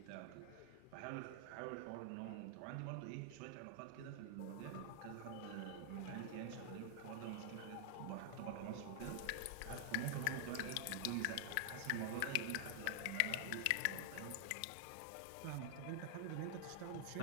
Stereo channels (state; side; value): different; both; correlation 0.00